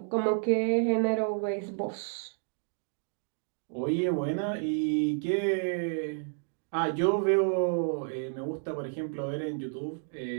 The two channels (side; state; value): left; silent; digital silence